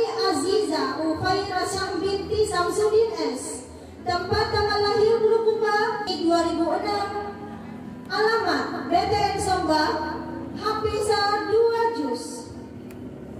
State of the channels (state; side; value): identical; both; correlation 1.00